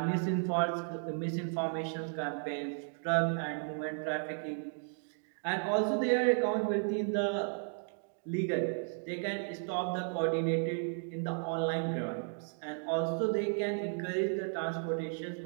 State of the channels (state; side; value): silent; left; 55 dB below the other